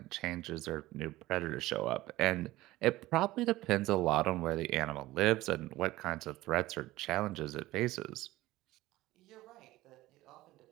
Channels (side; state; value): left; quieter; 17.5 dB